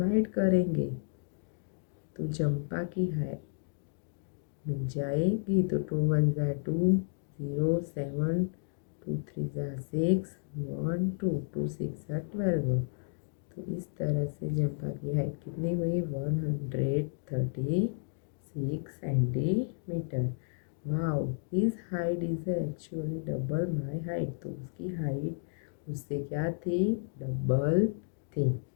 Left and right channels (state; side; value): silent; right; digital silence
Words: करेंगे तो चंपा की हाइट मिल जाएगी। तो 2 1 जा 2, 0 7, 2 3 जा 6, 1 2, 2 6 जा 12। तो इस तरह से चंपा की हाइट कितनी हुई, 136 centimetre. Wow, his height is actually double my height. तो उसकी हाइट उससे क्या थी, डबल थी।